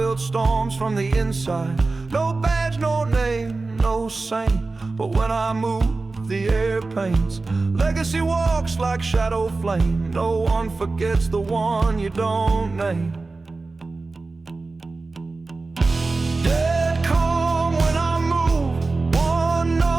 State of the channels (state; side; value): quieter; left; 3.6 dB